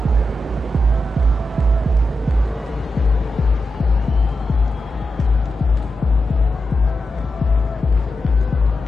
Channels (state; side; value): normal; both; correlation 0.88